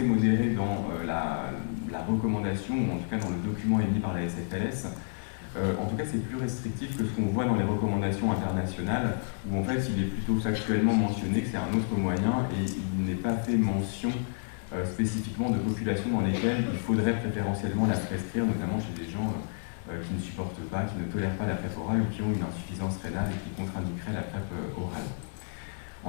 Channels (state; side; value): silent; right; digital silence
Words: modéré dans la recommandation ou en tout cas dans le document émis par la SFLS. En tout cas, c'est plus restrictif que ce qu'on voit dans les recommandations internationales, où en fait, il est plutôt factuellement mentionné que c'est un autre moyen et il n'est pas fait mention spécifiquement de populations dans lesquelles il faudrait préférentiellement la prescrire, notamment chez des gens qui ne supportent pas, qui ne tolèrent pas la PrEP orale ou qui ont une insuffisance rénale et qui contre-indiqueraient la PrEP orale.